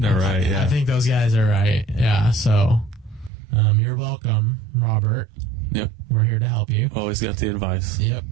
right, yeah. I think those guys are right. Yeah, so you're welcome, Robert. Yep. We're here to help you. Always got the advice. Yep.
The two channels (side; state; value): left; drops out; at 3.3 s